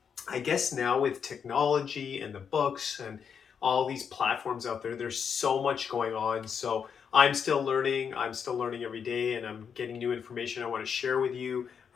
I guess now with technology and the books and all these platforms out there, there's so much going on. So I'm still learning. I'm still learning every day, and I'm getting new information I want to share with you,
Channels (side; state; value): right; quieter; 7.0 dB